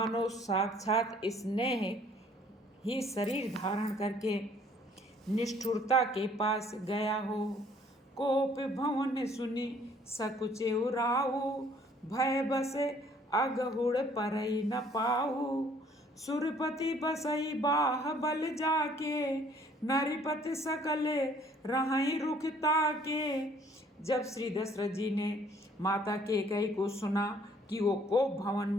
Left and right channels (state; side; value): normal; both; correlation 0.59